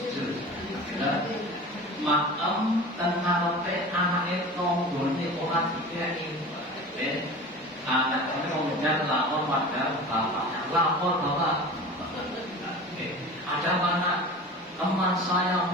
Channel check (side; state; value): both; normal; correlation 0.36